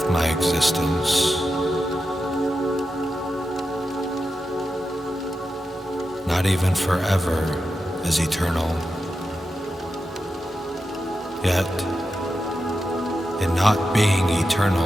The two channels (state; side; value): normal; both; correlation 0.89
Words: my existence. Not even forever is eternal, yet in not being